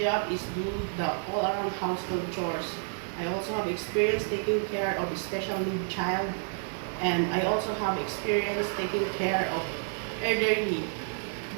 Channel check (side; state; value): left; silent; 58 dB below the other